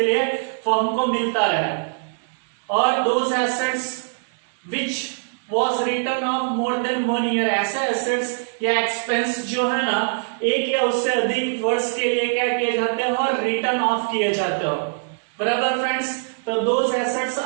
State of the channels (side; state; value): left; silent; digital silence